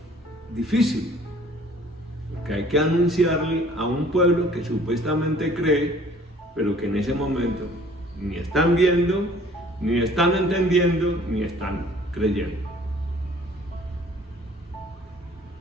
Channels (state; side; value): normal; both; correlation 0.54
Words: difícil, que hay que anunciarle a un pueblo que supuestamente cree, pero que en ese momento ni están viendo, ni están entendiendo, ni están creyendo.